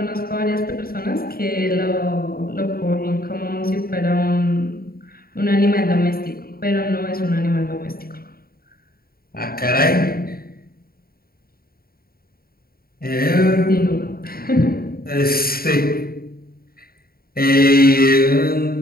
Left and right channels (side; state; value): right; late; 0.43 ms